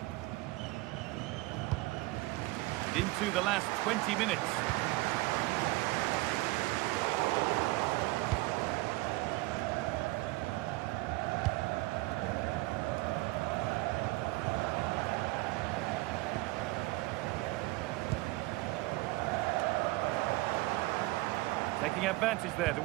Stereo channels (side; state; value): left; quieter; 21.2 dB